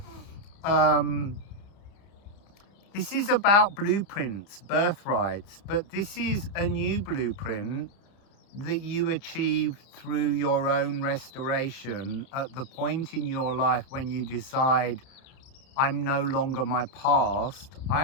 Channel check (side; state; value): right; late; 30 ms